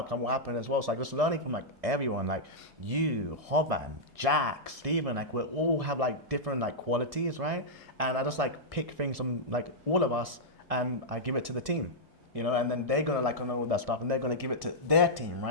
will happen as well. So like just learning from like everyone, like you, Hoban, Jack, Steven, like we all have like different like qualities, right? And I just like pick things from like all of us and I give it to the team, you know, and then they're gonna like know all that stuff and they're gonna give it to their team,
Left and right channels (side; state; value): left; late; 1.6 ms